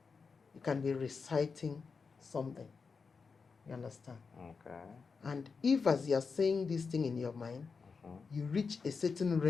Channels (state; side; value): quieter; right; 5.0 dB